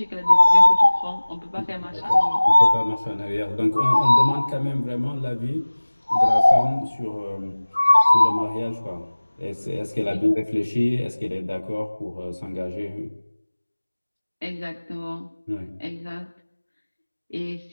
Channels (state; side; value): inverted; both; correlation -1.00